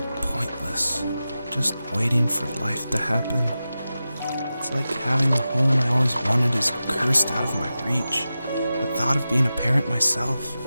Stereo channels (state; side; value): inverted; both; correlation -0.93